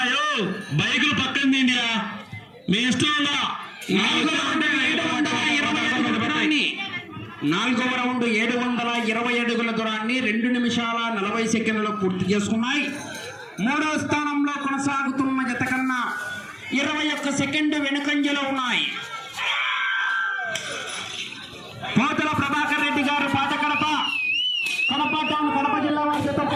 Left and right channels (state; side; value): identical; both; correlation 1.00